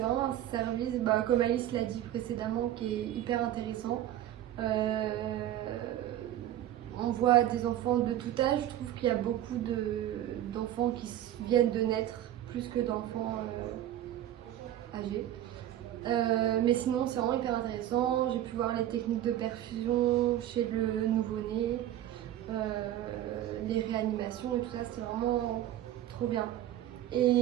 vraiment un service, comme Alice l'a dit précédemment, qui est hyper intéressant. On voit des enfants de tout âge. Je trouve qu'il y a beaucoup d'enfants qui viennent de naître plus que d'enfants âgés. Mais sinon, c'est vraiment hyper intéressant. J'ai pu voir les techniques de perfusion chez le nouveau-né, les réanimations et tout ça, c'est vraiment trop bien.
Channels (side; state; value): left; quieter; 12.5 dB